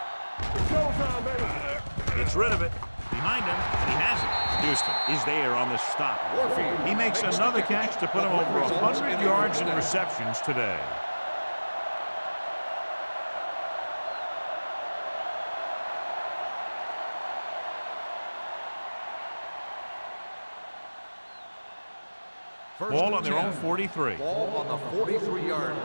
showtime, baby. Gets rid of it. Behind him, and he has it. Houston is there on the stop. He makes another catch to put him over 100 yards in receptions today. Ball on their own 43. Ball on the 43-yard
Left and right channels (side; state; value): both; inverted; correlation -1.00